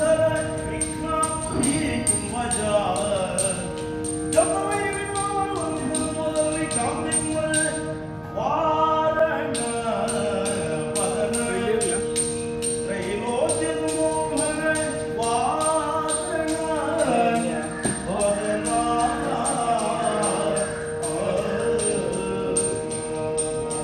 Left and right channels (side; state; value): both; identical; correlation 1.00